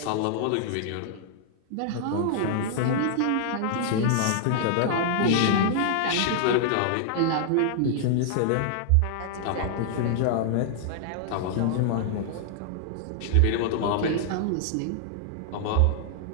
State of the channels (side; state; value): both; different; correlation -0.01